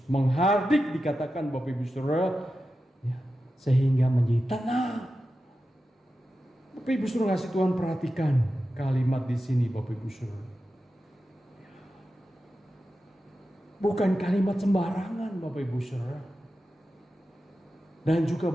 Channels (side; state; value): both; normal; correlation 0.91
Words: menghardik dikatakan Bapak Ibu Saudara, ya, sehingga menjadi tenang. Bapak Ibu Saudara kasih Tuhan, perhatikan kalimat di sini Bapak Ibu Saudara. Bukan kalimat sembarangan Bapak Ibu Saudara. Dan juga